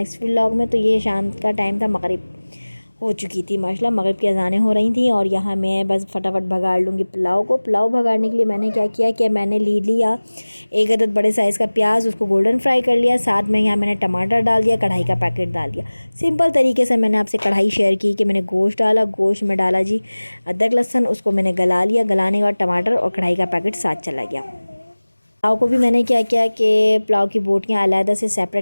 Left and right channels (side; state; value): both; inverted; correlation -1.00